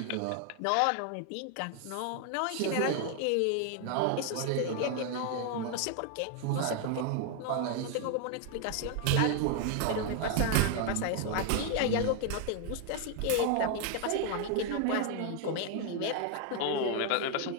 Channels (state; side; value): different; both; correlation 0.00